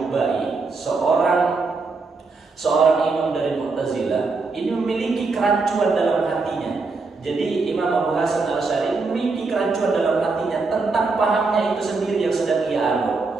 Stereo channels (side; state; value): left; quieter; 4.0 dB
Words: seorang imam dari Mu'tazilah, ini memiliki kerancuan dalam hatinya. Jadi Imam Abu Hasan al-Asy'ari memiliki kerancuan dalam hatinya tentang pahamnya itu sendiri yang sedang ia anut.